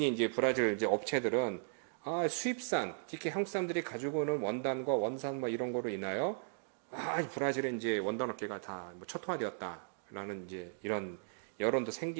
이제 브라질 이제 업체들은 수입산 특히 한국 사람들이 가지고 오는 원단과 원산 뭐 이런 거로 인하여 브라질의 이제 원단 업계가 다 뭐 초토화되었다라는 이제 이런 여론도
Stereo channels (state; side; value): silent; left; digital silence